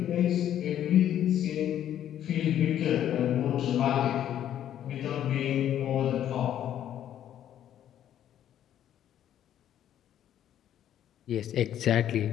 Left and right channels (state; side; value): quieter; right; 10.8 dB